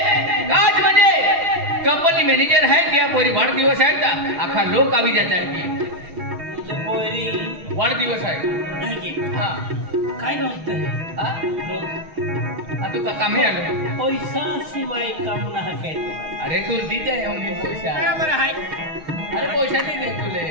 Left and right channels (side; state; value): left; late; 6.4 ms